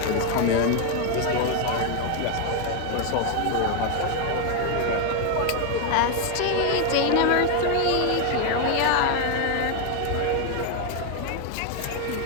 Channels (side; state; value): both; different; correlation 0.01